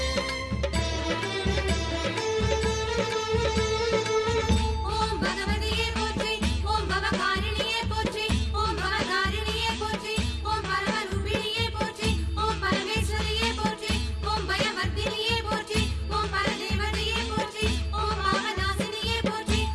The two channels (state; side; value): identical; both; correlation 1.00